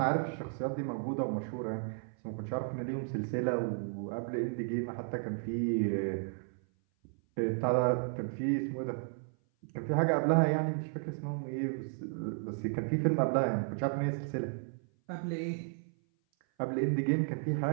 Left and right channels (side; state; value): left; silent; 55 dB below the other